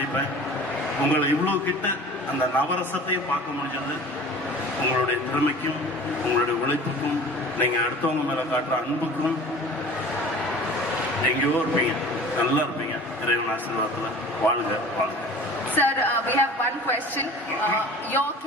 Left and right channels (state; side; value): normal; both; correlation 0.42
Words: உங்களை இவ்வளோ கிட்ட அந்த நவரசத்தையும் பார்க்க முடிஞ்சது உங்களுடைய திறமைக்கும் உங்களுடைய உழைப்புக்கும் நீங்கள் அடுத்தவங்க மேலே காட்டுற அன்புக்கும். எங்கேயோ இருப்பீங்க, நல்லா இருப்பீங்க. இறைவன் ஆசீர்வாதத்தில் வாழ்க வாழ்க. Sir, we have one question. Your